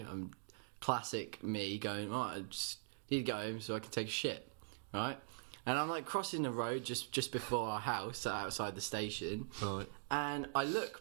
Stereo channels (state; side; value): silent; left; digital silence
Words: I'm classic me going, oh, I just need to go home so I can take a shit, right? And I'm like crossing the road just before our house, outside the station, Right. and I